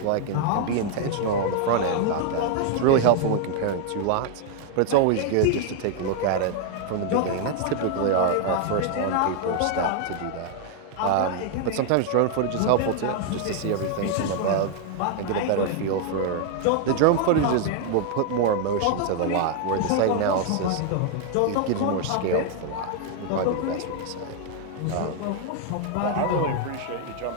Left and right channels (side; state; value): both; different; correlation 0.00